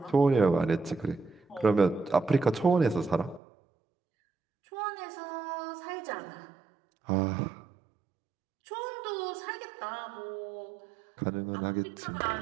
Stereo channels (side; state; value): left; drops out; at 3.4 s